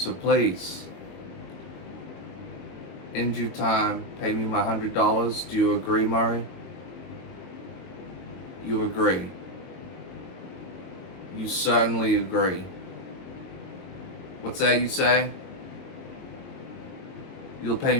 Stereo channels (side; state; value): right; late; 22 ms